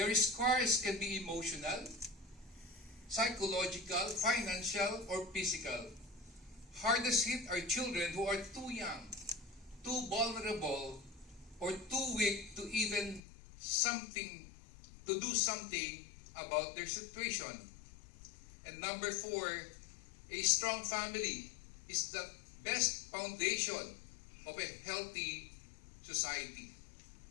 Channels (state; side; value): drops out; right; at 13.2 s